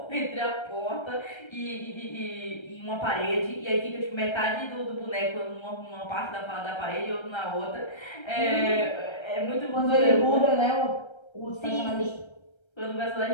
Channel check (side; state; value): right; late; 1.3 ms